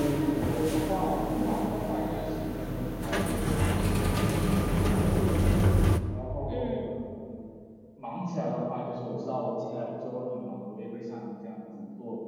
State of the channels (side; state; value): both; identical; correlation 1.00